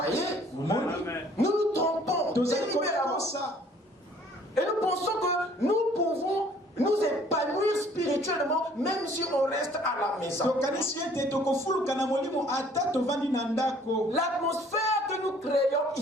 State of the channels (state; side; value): normal; both; correlation 0.57